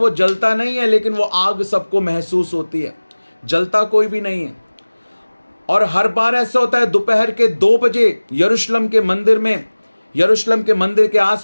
जलता नहीं है, लेकिन वो आग सबको महसूस होती है, जलता कोई भी नहीं है। और हर बार ऐसा होता है दोपहर के 2 बजे यरूशलेम के मंदिर में, यरूशलेम के मंदिर के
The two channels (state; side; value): inverted; both; correlation -1.00